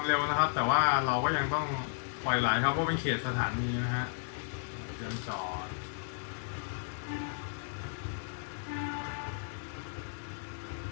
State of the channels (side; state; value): right; silent; digital silence